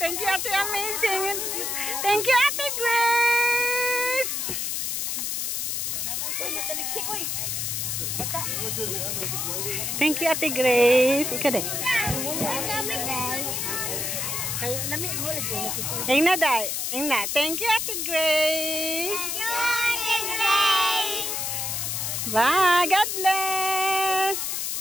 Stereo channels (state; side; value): noise; left; hiss, 1 dB below the sound